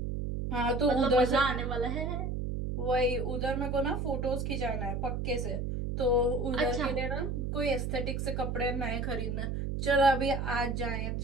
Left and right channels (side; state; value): right; noise; hum, 2 dB below the sound